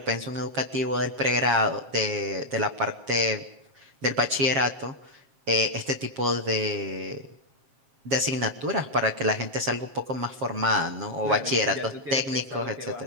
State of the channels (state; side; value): late; left; 7.3 ms